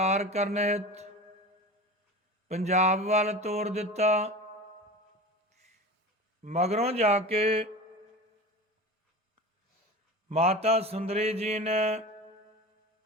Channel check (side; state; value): both; normal; correlation 0.32